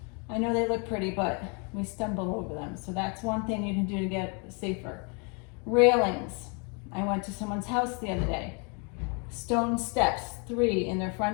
I know they look pretty, but we stumble over them. So that's one thing you can do to get safer. Railings. I went to someone's house the other day. Stone steps, 3 in their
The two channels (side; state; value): right; quieter; 35.0 dB